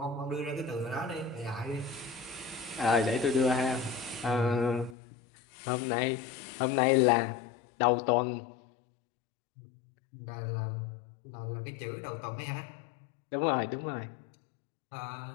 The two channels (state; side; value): drops out; right; at 5.0 s